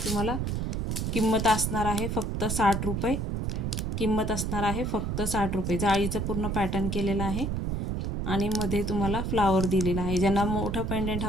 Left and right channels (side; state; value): right; noise; rumble, 1 dB below the sound